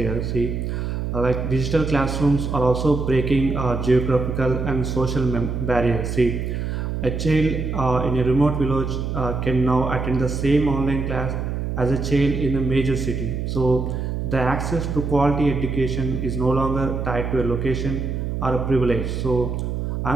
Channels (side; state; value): right; noise; hum, 2 dB below the sound